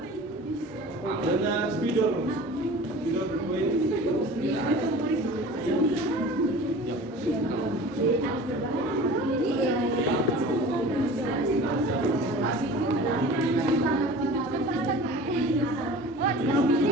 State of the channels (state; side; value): normal; both; correlation 0.40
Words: Dengan spidol berpoin.